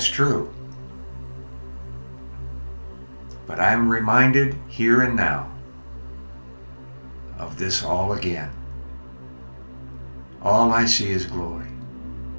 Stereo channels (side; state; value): both; inverted; correlation -1.00